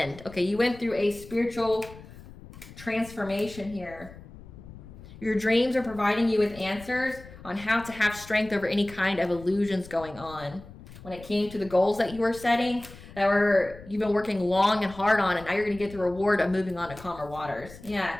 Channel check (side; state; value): left; noise; rumble, 18 dB below the sound